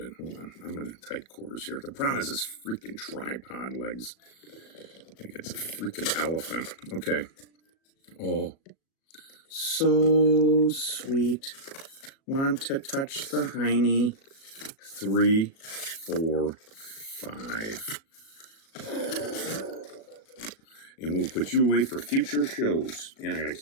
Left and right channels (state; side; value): late; right; 37 ms